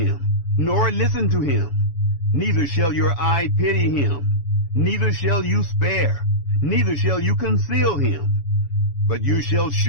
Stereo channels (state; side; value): late; right; 7.1 ms